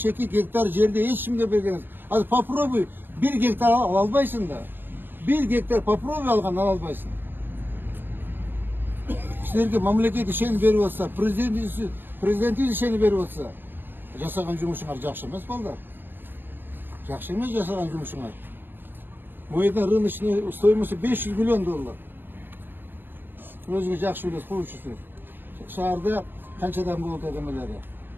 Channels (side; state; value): left; late; 0.097 ms